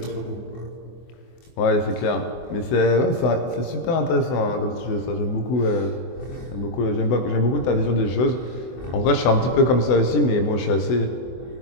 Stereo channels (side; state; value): right; late; 24 ms